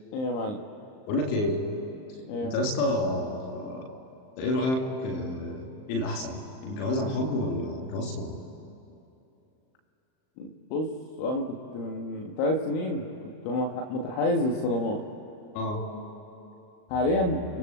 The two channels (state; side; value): late; right; 38 ms